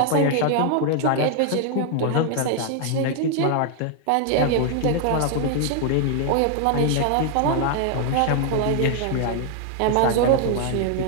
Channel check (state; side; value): different; both; correlation 0.00